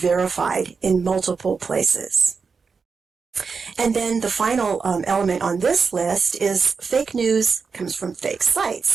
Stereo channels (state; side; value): quieter; left; 5.2 dB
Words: in multiple places. And then the final element on this list is fake news comes from fake